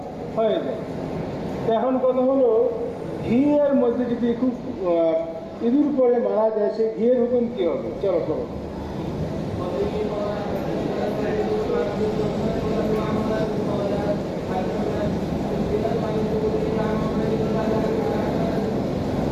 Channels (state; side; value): identical; both; correlation 1.00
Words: হয়ে যায়। এখন কথা হলো, ঘিয়ের মধ্যে যদি খুব ইঁদুর পরে মারা যায়, সেই ঘিয়ের হুকুম কি হবে? চলো করো।